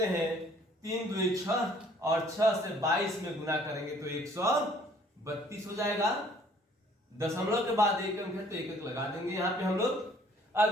हैं। 3 दूनी 6 और 6 से 22 में गुना करेंगे तो 132 हो जाएगा। दशमलव के बाद एक अंक है तो एक अंक लगा देंगे यहाँ पे हम लोग। अब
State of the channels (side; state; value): both; normal; correlation 0.58